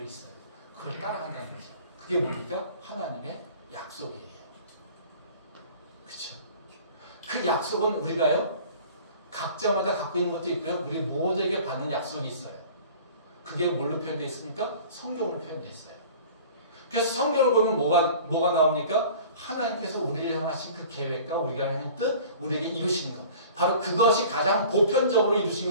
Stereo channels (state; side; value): inverted; both; correlation -0.45